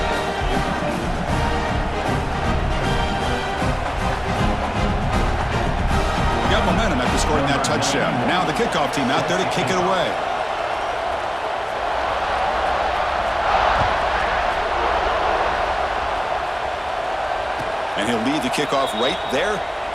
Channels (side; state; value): both; identical; correlation 1.00